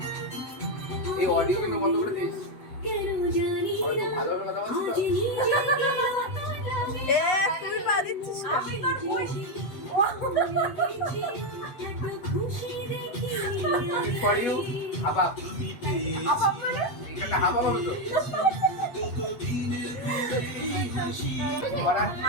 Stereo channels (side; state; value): right; late; 8.2 ms